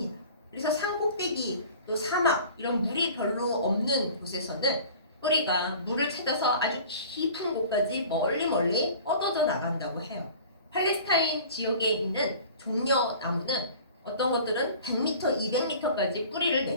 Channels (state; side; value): inverted; both; correlation -0.44